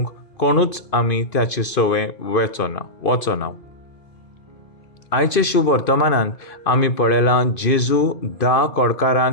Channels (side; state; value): right; late; 2.5 ms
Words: कोणूच आमी त्याची सवय वचना. आयचे शुभ वर्तमानांत आमी पळयलां जेजू 10